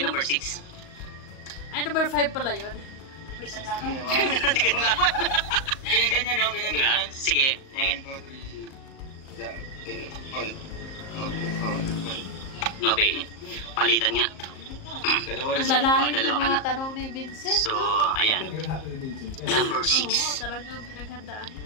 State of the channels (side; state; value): right; late; 38 ms